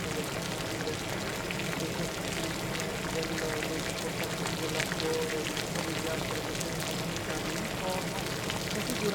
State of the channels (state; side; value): identical; both; correlation 1.00